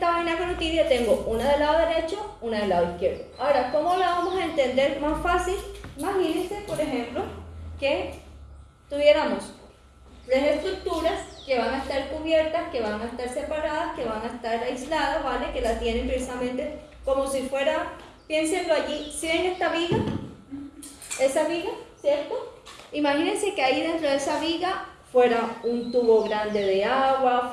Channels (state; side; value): identical; both; correlation 1.00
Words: vaina carotidia tengo una del lado derecho, una del lado izquierdo. Ahora, ¿cómo la vamos a entender más fácil? Imagínense, por ejemplo, que tuviéramos tres estructuras que van a estar cubiertas, que van a estar separadas, que van a estar aisladas, ¿vale? Que la tienen precisamente como si fuera, piénsenlo allí, ¿sí ven esta viga? Esa viga, ¿cierto? Imagínense que ahí dentro de esa viga fuera un tubo grande de agua,